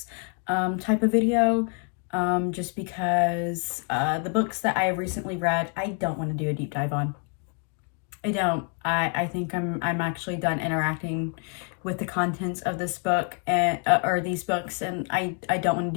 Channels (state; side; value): quieter; right; 39.3 dB